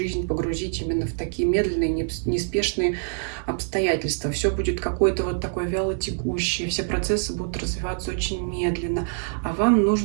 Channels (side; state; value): left; silent; 62 dB below the other